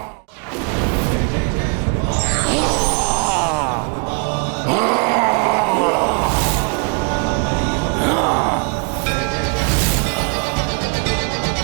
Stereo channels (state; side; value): quieter; left; 37.3 dB